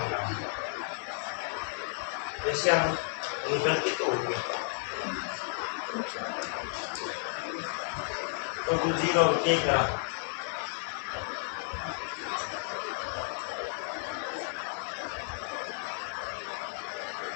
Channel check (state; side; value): silent; right; 56 dB below the other